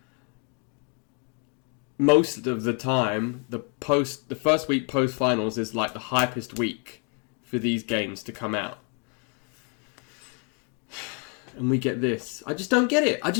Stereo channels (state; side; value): quieter; right; 37.6 dB